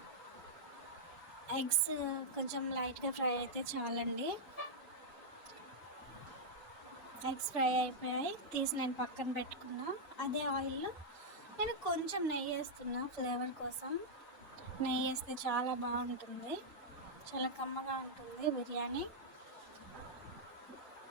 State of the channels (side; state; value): both; normal; correlation -0.06